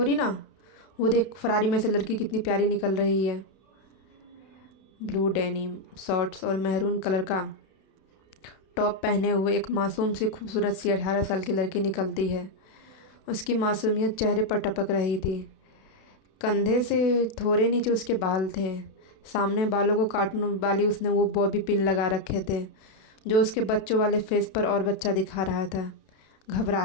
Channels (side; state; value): right; late; 32 ms